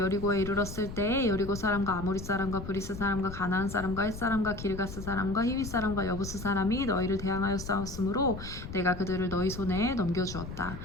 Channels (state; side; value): noise; left; rumble, 10 dB below the sound